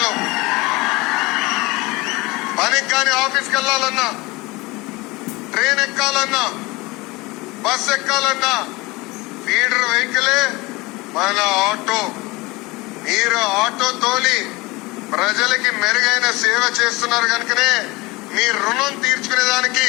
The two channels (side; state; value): right; quieter; 22.6 dB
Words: పనికి కానీ ఆఫీస్కి వెళ్లాలన్నా, ట్రైన్ ఎక్కాలన్నా, బస్ ఎక్కాలన్నా ఫీడర్ వెహికలే మన ఆటో. మీరు ఆటో తోలి ప్రజలకి మెరుగైన సేవ చేస్తున్నారు కనుకనే మీ రుణం తీర్చుకునేదానికి